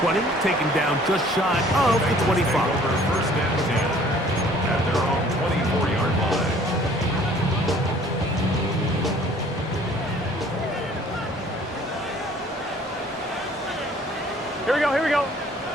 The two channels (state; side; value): normal; both; correlation 0.55